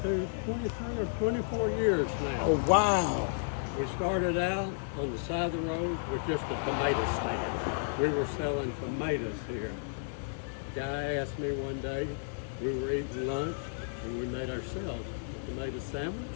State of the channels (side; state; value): right; silent; digital silence